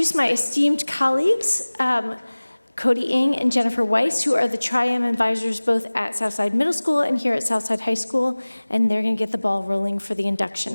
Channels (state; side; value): inverted; both; correlation -1.00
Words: my esteemed colleagues, Cody Ng and Jennifer Weiss, who are the Tri-M advisors both at Southside Middle School and here at Southside High School, and they're going to get the ball rolling for the